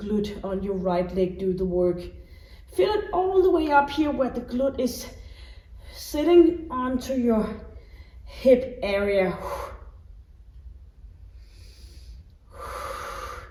on your right leg do the work. Feel it all the way up here where the glute is sitting onto your hip area.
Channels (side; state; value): both; identical; correlation 1.00